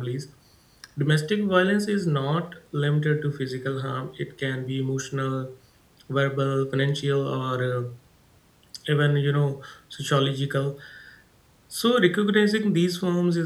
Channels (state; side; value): identical; both; correlation 1.00